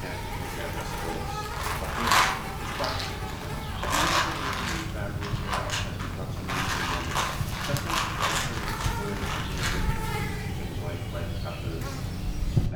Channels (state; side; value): identical; both; correlation 1.00